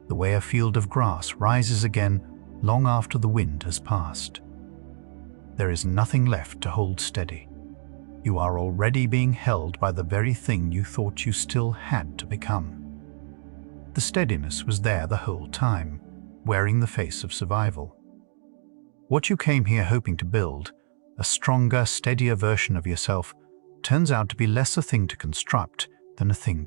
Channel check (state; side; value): silent; left; digital silence